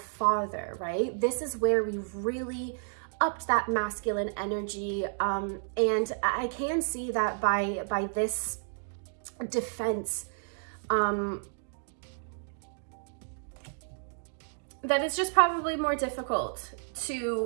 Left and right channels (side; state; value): left; silent; digital silence